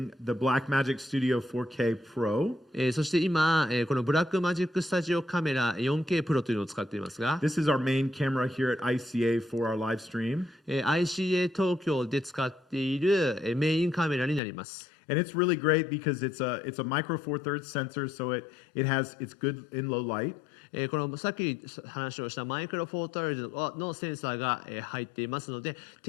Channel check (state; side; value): drops out; right; at 14.4 s